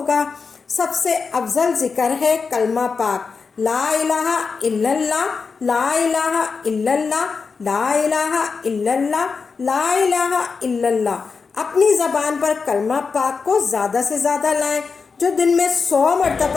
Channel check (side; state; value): right; quieter; 5.0 dB